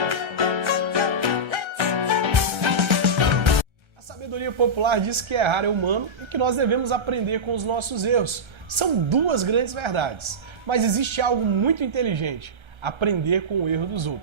A sabedoria popular diz que errar é humano e que nós devemos aprender com os nossos erros. São duas grandes verdades, mas existe algo muito inteligente: aprender com o erro dos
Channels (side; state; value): left; late; 1.3 ms